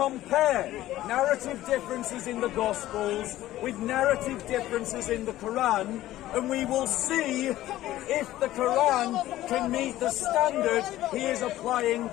narrative differences in the Gospels with narrative differences in the Quran, and we will see if the Quran can meet the standard he is applying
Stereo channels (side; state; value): right; quieter; 14.8 dB